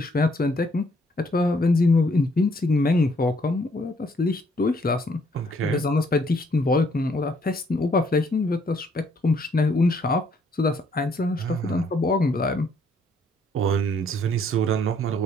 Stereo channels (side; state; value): both; normal; correlation 0.66